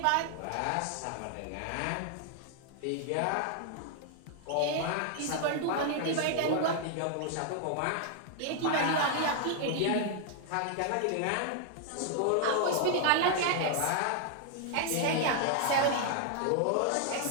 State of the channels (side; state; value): both; different; correlation 0.00